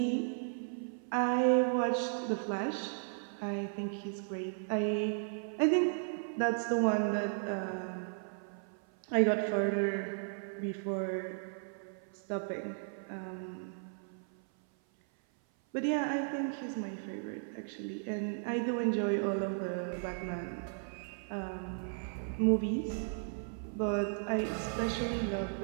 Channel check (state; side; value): silent; left; 54 dB below the other